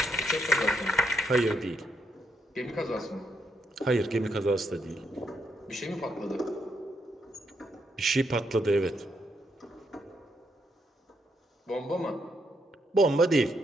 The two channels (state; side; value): normal; both; correlation 0.78